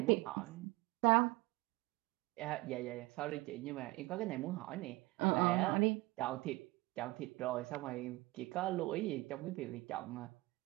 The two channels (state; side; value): quieter; left; 21.8 dB